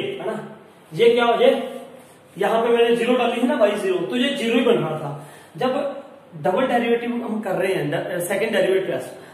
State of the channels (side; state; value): both; identical; correlation 1.00